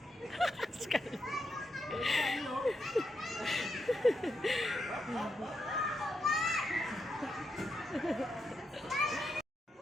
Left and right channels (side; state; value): both; normal; correlation 0.83